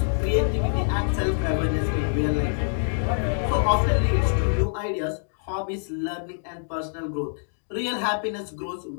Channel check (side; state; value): right; silent; digital silence